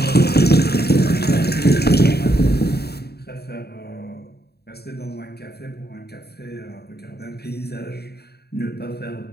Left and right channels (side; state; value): right; late; 0.47 ms